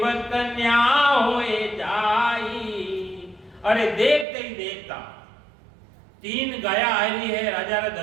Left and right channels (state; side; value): drops out; left; at 4.2 s